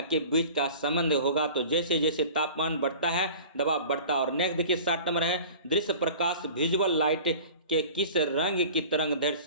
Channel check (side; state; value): both; inverted; correlation -0.41